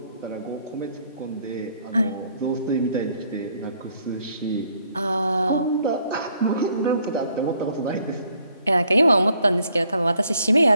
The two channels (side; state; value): both; inverted; correlation -0.66